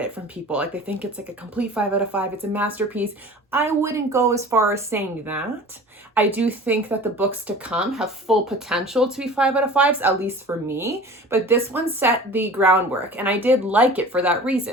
from people. They think it's a complete 5 out of 5. It's a masterpiece. I wouldn't go as far as saying that. I do think that the books to come have full potential to be 5 out of 5s, at least for me. But this one set the groundwork, and I did like it for that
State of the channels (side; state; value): both; normal; correlation 0.41